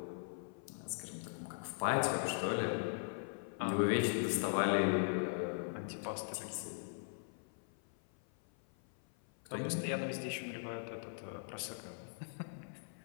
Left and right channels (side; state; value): right; silent; 51 dB below the other